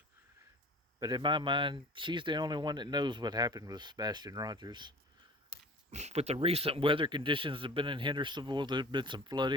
But in my mind, she's the only one that knows what happened with Sebastián Rogers. With the recent weather conditions that have been in Hendersonville, there's been some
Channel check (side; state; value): both; normal; correlation 0.42